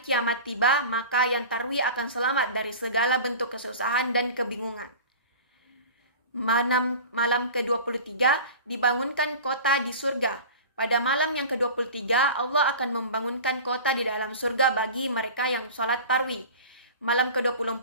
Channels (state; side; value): inverted; both; correlation -0.36